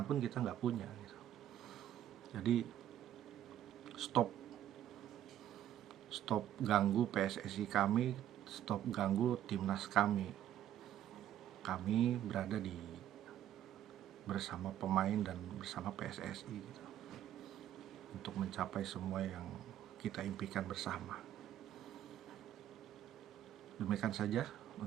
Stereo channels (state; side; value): quieter; left; 11.6 dB